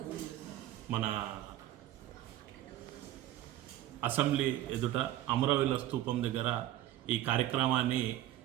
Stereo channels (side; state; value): left; quieter; 13.5 dB